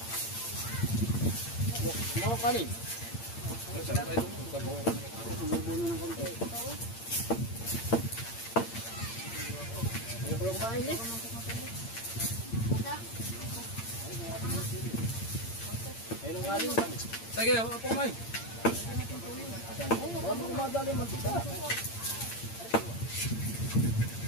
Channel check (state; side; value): late; right; 8.8 ms